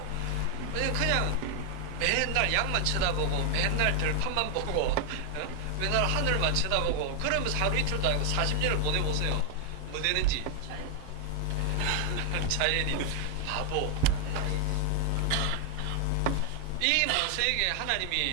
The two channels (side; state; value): both; different; correlation 0.00